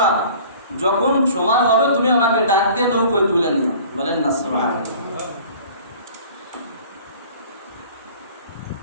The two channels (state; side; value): inverted; both; correlation -0.47